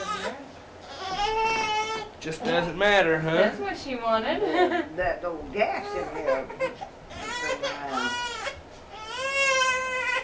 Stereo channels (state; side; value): identical; both; correlation 1.00